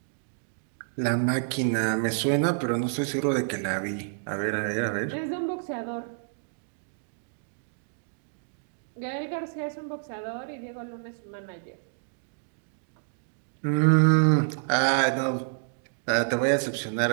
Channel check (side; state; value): left; silent; digital silence